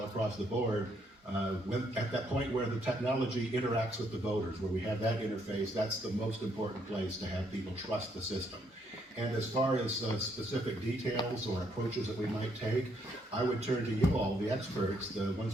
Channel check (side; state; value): both; normal; correlation 0.72